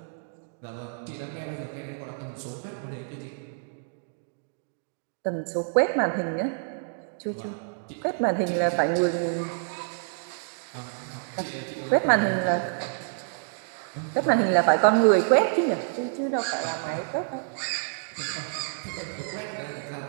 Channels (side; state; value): left; silent; digital silence